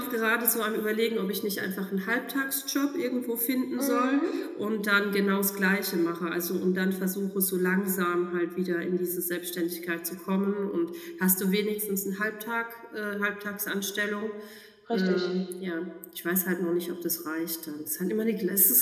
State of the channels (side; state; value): both; identical; correlation 1.00